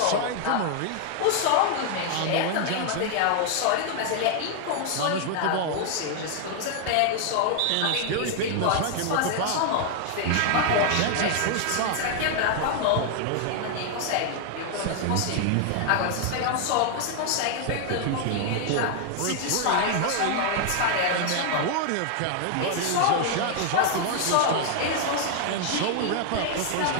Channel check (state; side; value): different; both; correlation 0.00